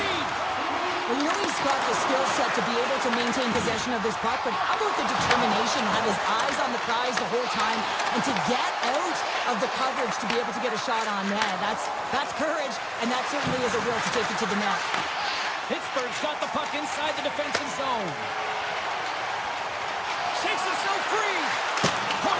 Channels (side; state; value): both; identical; correlation 1.00